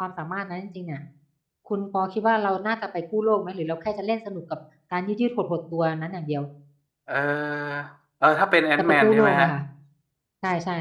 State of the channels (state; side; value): identical; both; correlation 1.00